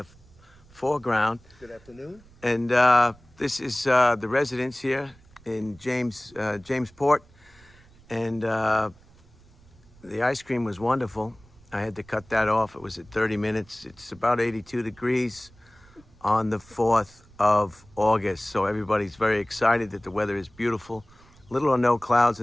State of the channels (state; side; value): noise; right; rumble, 26 dB below the sound